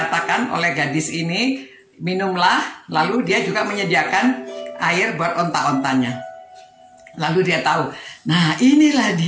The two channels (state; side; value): identical; both; correlation 1.00